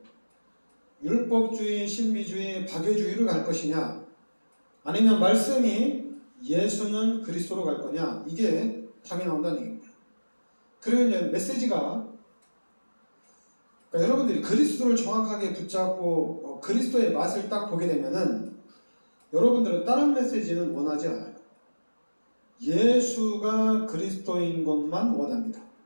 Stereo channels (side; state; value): both; inverted; correlation -1.00